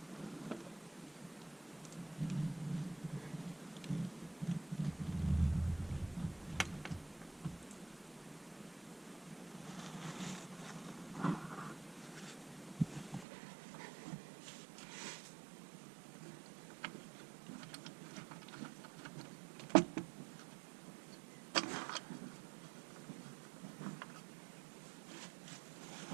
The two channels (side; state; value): left; drops out; at 13.2 s